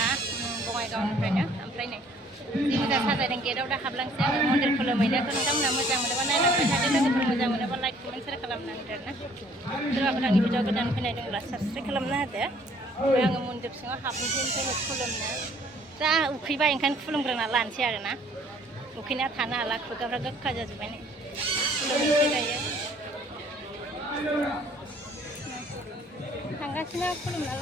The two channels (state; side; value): normal; both; correlation 0.59